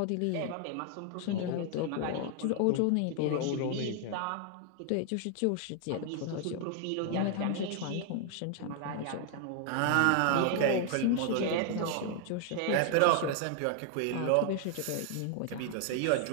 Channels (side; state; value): both; different; correlation 0.00